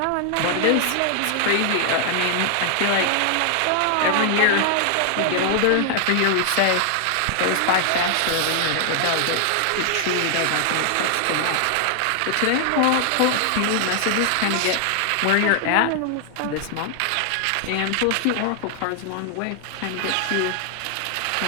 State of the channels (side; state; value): both; different; correlation 0.00